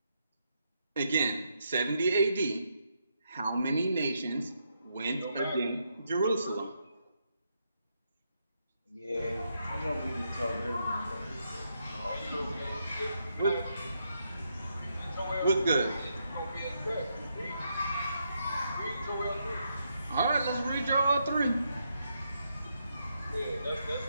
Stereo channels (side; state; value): both; inverted; correlation -0.80